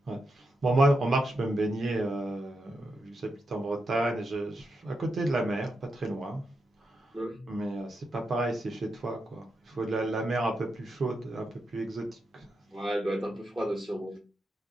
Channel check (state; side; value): normal; both; correlation 0.86